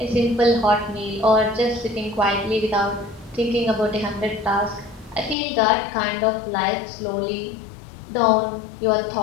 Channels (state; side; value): drops out; right; at 5.4 s